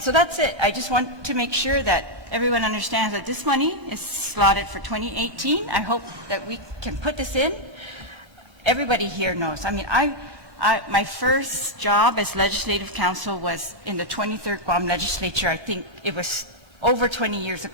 that's it. I just want to make sure that everyone understands that this money is slotted for 2018. I hope that we can put this in. Everybody here knows. I mean, my first job as legislative counsel was in the 23rd Guam Legislature. I think it was over 20 years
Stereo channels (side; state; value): left; late; 1.4 ms